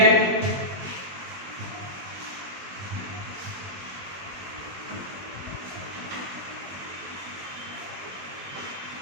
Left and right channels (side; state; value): left; late; 21 ms